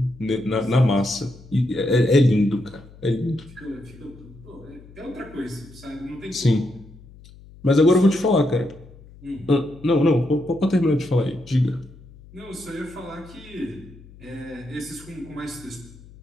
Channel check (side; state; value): left; noise; hum, 21 dB below the sound